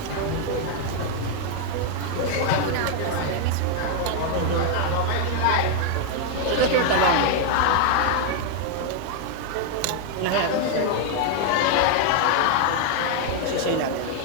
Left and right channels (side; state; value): both; different; correlation 0.00